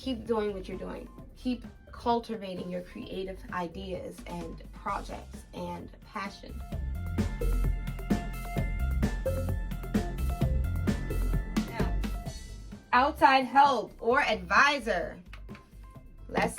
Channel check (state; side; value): identical; both; correlation 1.00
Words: doing what you're doing. Keep cultivating your creative ideas and projects and passion. Now, outside help or advisor.